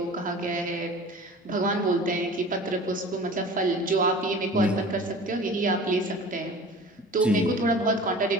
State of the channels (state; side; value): normal; both; correlation 0.41